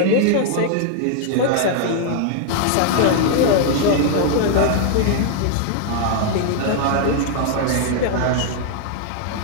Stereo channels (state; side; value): different; both; correlation 0.00